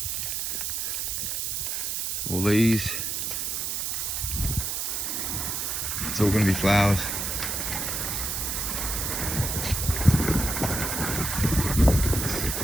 All these. It's all going to be flowers.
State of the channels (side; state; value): right; noise; hiss, 1 dB below the sound